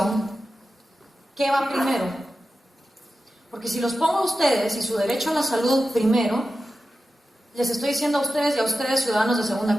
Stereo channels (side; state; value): both; normal; correlation 0.92